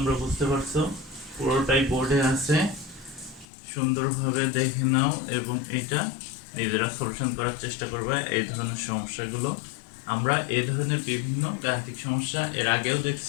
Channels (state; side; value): drops out; right; at 3.5 s